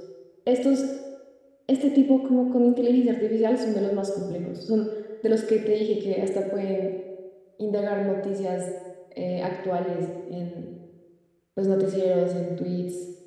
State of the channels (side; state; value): both; identical; correlation 1.00